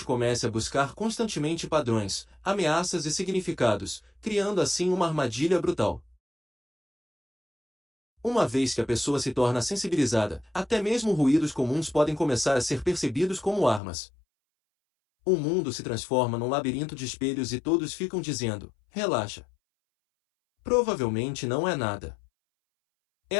comece a buscar constantemente padrões, ameaças e significados, criando assim uma armadilha brutal. Uma vez que a pessoa se torna sensibilizada, até mesmo ruídos comuns podem começar a ser percebidos como armas. O mundo se transforma num labirinto de espelhos e todos ficam dizendo: relaxa. Provavelmente não é nada.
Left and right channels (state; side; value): drops out; right; at 13.8 s